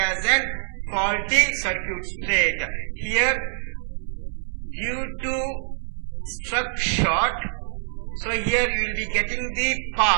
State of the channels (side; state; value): left; silent; digital silence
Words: an faulty circuit state. Here due to struck short, so here you will be getting the